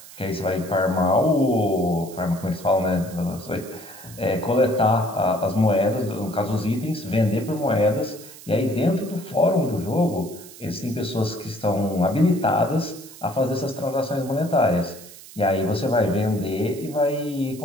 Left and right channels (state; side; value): noise; right; hiss, 18 dB below the sound